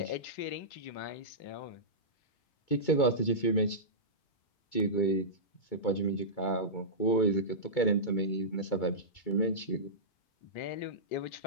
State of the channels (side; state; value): right; late; 2.2 ms